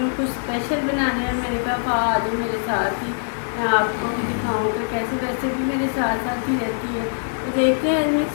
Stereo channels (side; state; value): right; silent; digital silence